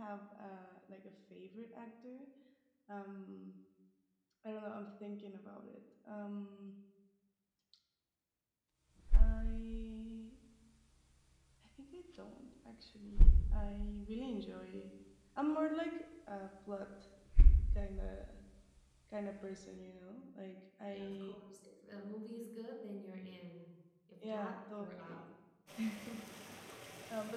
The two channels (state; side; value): identical; both; correlation 1.00